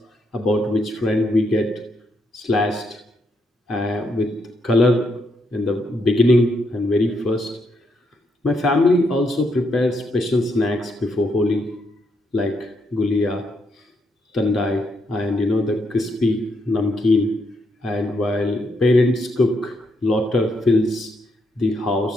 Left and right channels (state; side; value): normal; both; correlation 0.78